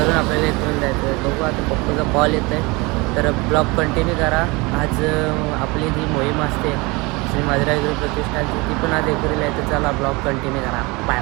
आपल्याला एकविरेला जायचं आहे. बघू आता पप्पूचा कॉल येतो आहे. तर ब्लॉग कंटिन्यू करा. आज आपली जी मोहीम असते श्री माधुराय गुरु प्रतिष्ठानची, ती पण आज एकविरेला आहे. तर चला ब्लॉग कंटिन्यू करा. बाय.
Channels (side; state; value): left; quieter; 25.3 dB